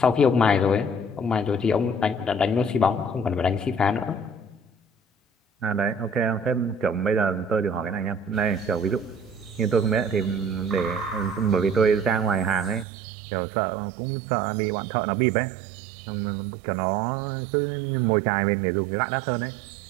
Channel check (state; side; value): drops out; left; at 12.9 s